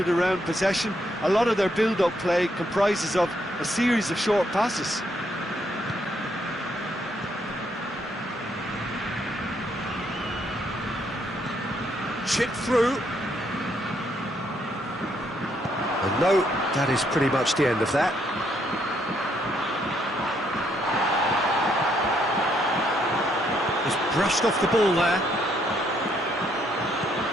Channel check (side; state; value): both; normal; correlation 0.73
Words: around possession. A lot of their build-up play comprises of a series of short passes. Chip through. And no, that is pretty much the end of that. He's brushed off the ball there.